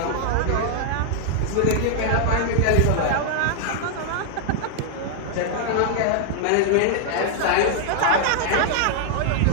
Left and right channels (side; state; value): both; different; correlation 0.00